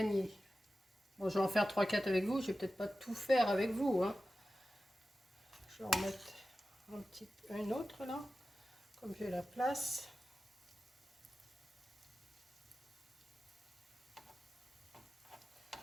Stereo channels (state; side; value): normal; both; correlation 0.94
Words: Bon, je vais en faire 3-4 avec vous. Je vais peut-être pas tout faire avec vous. Hein. Je vais en mettre un autre là. Comme j'ai la place.